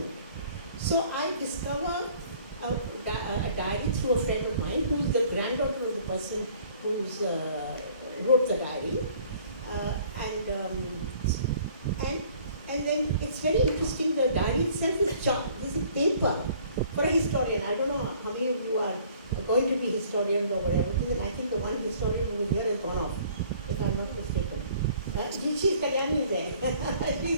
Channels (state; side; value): inverted; both; correlation -0.55